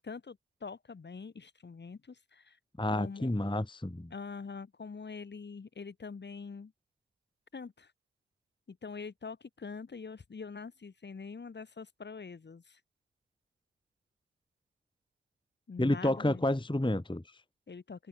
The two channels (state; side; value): normal; both; correlation 0.77